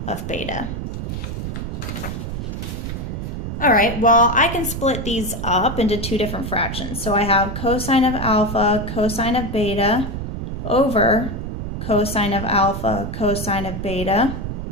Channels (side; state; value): right; noise; rumble, 5 dB below the sound